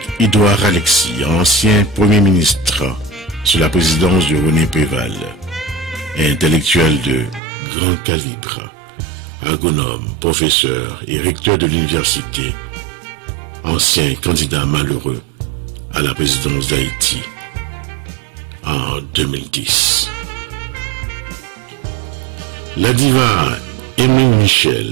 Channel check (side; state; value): left; drops out; at 7.4 s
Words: Alexis, ancien Premier ministre sous la présidence de René Préval, intellectuel de grand calibre, agronome, professeur et recteur de l'université, ancien candidat malheureux à la présidence d'Haïti en 2010. La diva Emeline